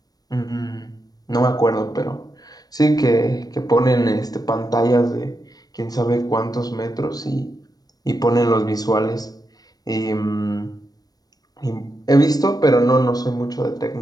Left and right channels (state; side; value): late; right; 0.19 ms